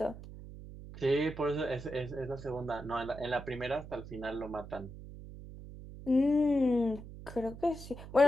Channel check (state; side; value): noise; right; hum, 13 dB below the sound